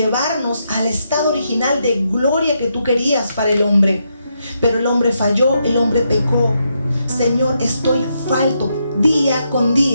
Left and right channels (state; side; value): inverted; both; correlation -0.81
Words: al estado original de gloria que tú querías para el hombre. Pero el hombre falló, el hombre pecó. Señor, estoy falto día con